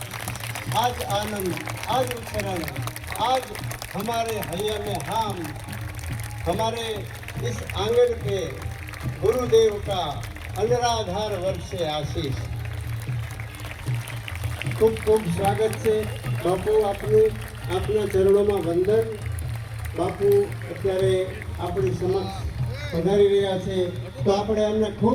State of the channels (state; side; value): identical; both; correlation 1.00